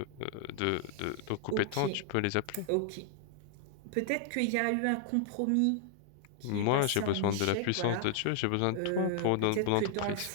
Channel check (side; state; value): both; different; correlation 0.00